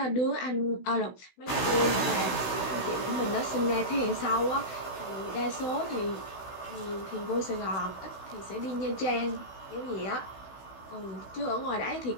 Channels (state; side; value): late; right; 16 ms